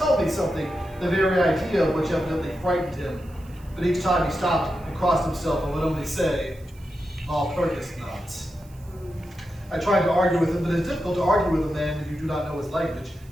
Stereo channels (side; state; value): right; noise; hiss, 28 dB below the sound